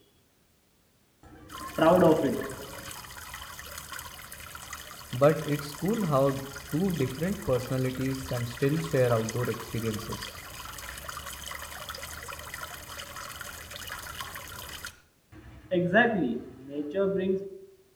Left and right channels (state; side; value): identical; both; correlation 1.00